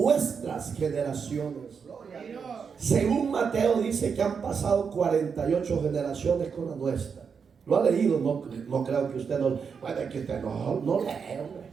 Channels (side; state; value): left; quieter; 6.1 dB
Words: generaciones. Según Mateo dice que han pasado 48 generaciones con la nuestra. ¿Lo ha leído? No creo que usted no. Bueno, es que usted no lee, hombre.